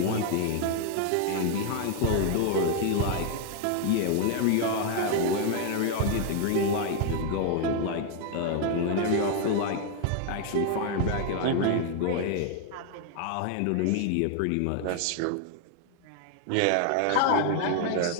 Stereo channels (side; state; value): both; different; correlation 0.00